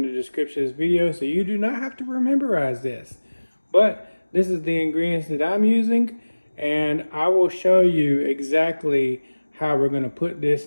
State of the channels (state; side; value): inverted; both; correlation -1.00